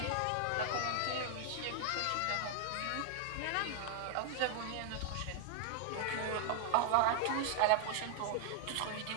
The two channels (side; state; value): both; different; correlation -0.01